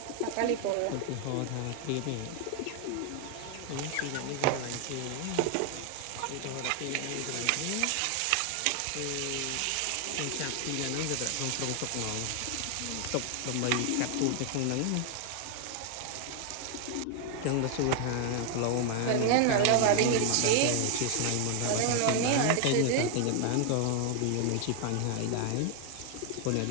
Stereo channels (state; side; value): different; both; correlation 0.00